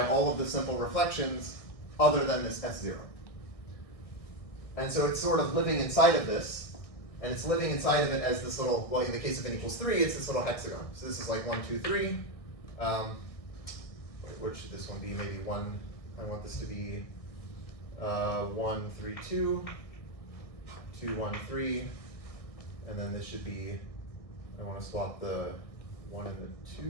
all of the simple reflections other than this S0. And so it's sort of living inside of this, and it's living inside of it as this little, well, in the case of n equals 3, it's this little hexagon. So this is like 1, 2, 3. What should this one be? Maybe 1, I want this to be 1, 3, 2, 2, 1, 3, and then this should be, I want to swap the 1 and the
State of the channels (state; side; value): late; right; 1.6 ms